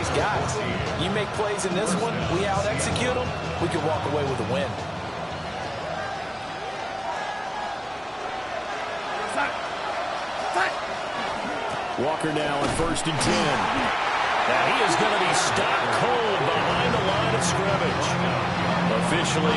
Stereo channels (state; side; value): identical; both; correlation 1.00